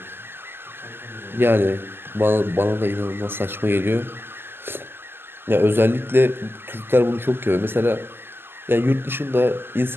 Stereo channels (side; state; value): left; late; 0.11 ms